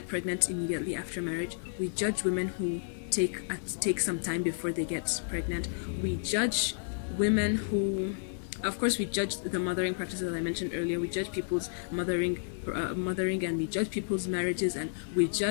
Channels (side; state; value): right; silent; digital silence